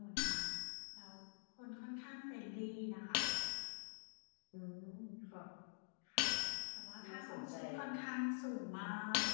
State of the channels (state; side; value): silent; right; digital silence